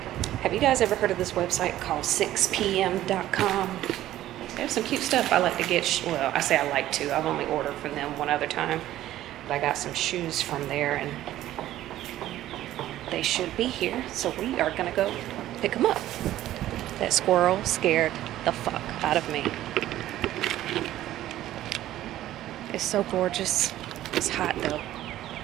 Have you guys ever heard of this website called 6pm.com? They have some cute stuff. I like to get, well, I say I like to. I've only ordered from them one other time. But I got some shoes from there and they should be here. So we are gonna go pick them up. That squirrel scared the fuck out of me. It's so gorgeous. It's hot though.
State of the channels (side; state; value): left; quieter; 13.8 dB